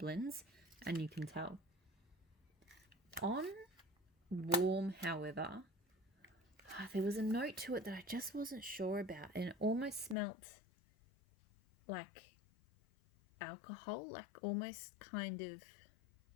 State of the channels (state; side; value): drops out; right; at 10.2 s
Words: and you can tell. On warm, however, there was a note to it that I just wasn't sure about, and it almost smelt like alcohol, like almost kind of